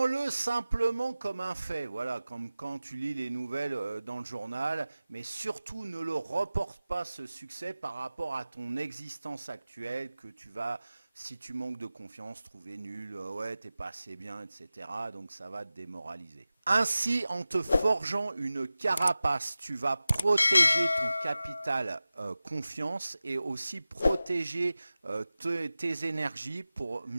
simplement comme un fait, voilà, comme quand tu lis les nouvelles dans le journal, mais surtout ne le reporte pas ce succès par rapport à ton existence actuelle que tu vas, si tu manques de confiance, trouver nul, ouais, t'es pas assez bien, etc. Donc ça va te démoraliser. Ainsi, en te forgeant une carapace, tu vas protéger ton capital confiance et aussi protéger tes énergies pour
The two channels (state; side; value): inverted; both; correlation -0.96